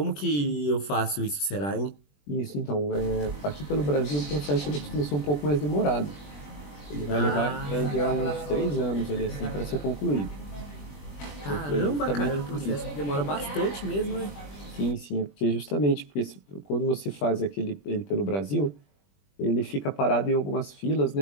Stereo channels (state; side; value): late; right; 21 ms